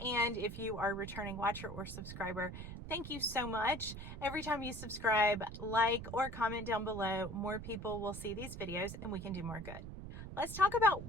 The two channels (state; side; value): noise; right; rumble, 9 dB below the sound